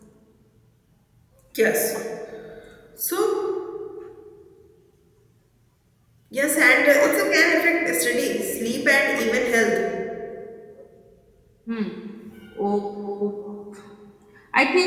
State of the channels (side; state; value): both; identical; correlation 1.00